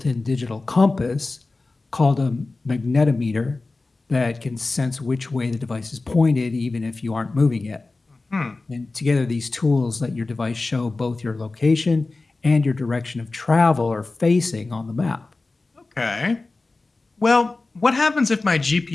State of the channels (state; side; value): quieter; right; 3.4 dB